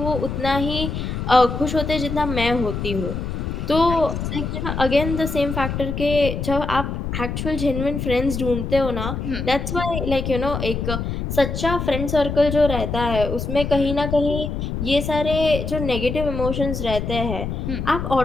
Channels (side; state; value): left; noise; rumble, 4 dB below the sound